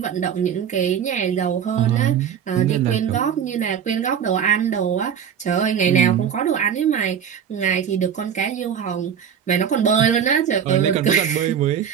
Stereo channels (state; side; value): quieter; left; 8.2 dB